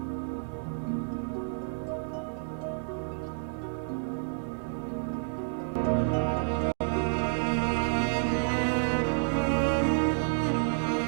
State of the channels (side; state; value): left; silent; 58 dB below the other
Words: lui apporte le souvenir de tous les siens, cette grande famille prospère dans le Bordeaux d'alors.